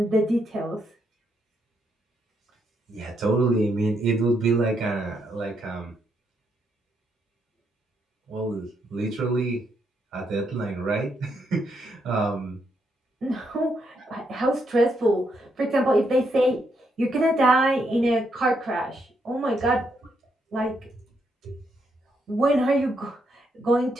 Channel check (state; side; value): normal; both; correlation 0.78